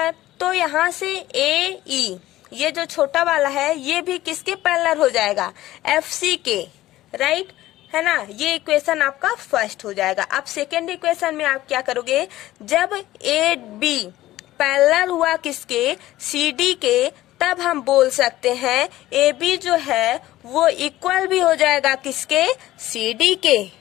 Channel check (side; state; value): right; quieter; 15.6 dB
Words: तो यहाँ से AE ये जो छोटा वाला है ये भी किसके पैरेलल हो जाएगा? FC के। राइट, है ना? ये इक्वेशन आपका फर्स्ट हो जाएगा। अब सेकेंड इक्वेशन में आप क्या करोगे? जब AB पैरेलल हुआ किसके? CD के, तब हम बोल सकते हैं AB जो है वो इक्वल भी हो जाएगा किसके? CD के।